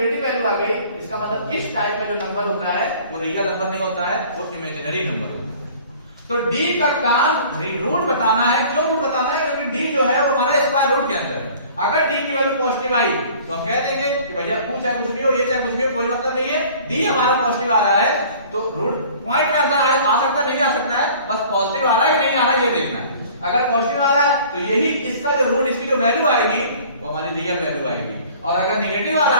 वैल्यू आ गई, इसका मतलब इस टाइप का जो नंबर होता है वो रियल नंबर नहीं होता है, वो इमेजिनरी नंबर होता है। तो d का काम रूट बताना है। क्यों रूट बताना है, क्योंकि d जो है वो हमारा स्क्वायर रूट के अंदर है। अगर d की वैल्यू पॉजिटिव आई तो हम कह देंगे कि भैया चाहे कुछ भी हो, ये चाहे कुछ भी हो, कोई मतलब नहीं है, d हमारा पॉजिटिव आ रहा है तो रूट पॉइंट में आ सकता नहीं आ सकता है, बस पॉजिटिव आ रहा है कि नहीं आ रहा है ये देखना है। अगर पॉजिटिव आ रहा है तो यही इसका जो रूट, इसकी जो वैल्यू आएगी वो हमारी रियल वैल्यू आएगी, और अगर नेगेटिव आ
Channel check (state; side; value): inverted; both; correlation -0.49